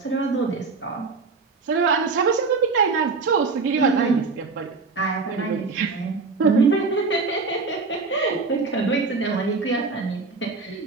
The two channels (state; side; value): quieter; left; 4.3 dB